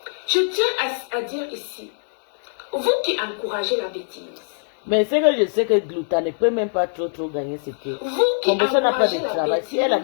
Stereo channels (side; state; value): right; silent; digital silence